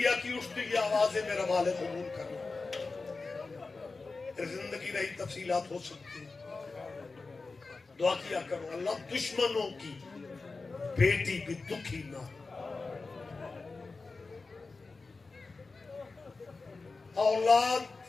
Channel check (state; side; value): quieter; right; 3.9 dB